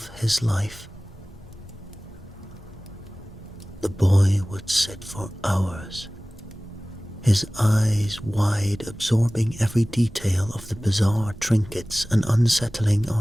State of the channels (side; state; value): both; normal; correlation 0.98